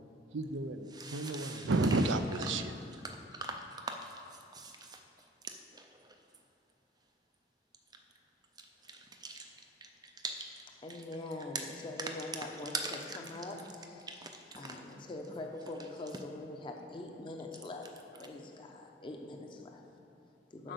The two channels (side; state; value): both; normal; correlation 0.44